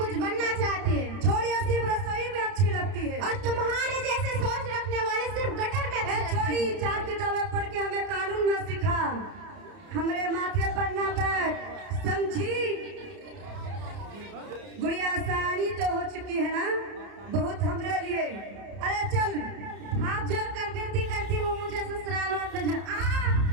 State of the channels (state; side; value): late; left; 30 ms